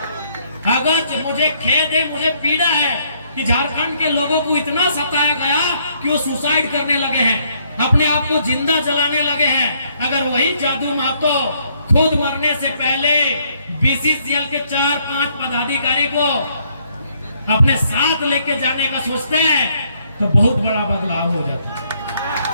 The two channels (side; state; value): both; inverted; correlation -0.69